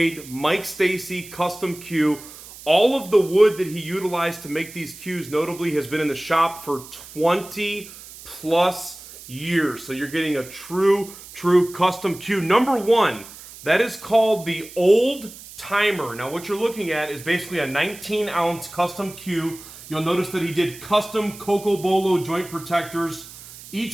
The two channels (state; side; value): noise; right; hiss, 17 dB below the sound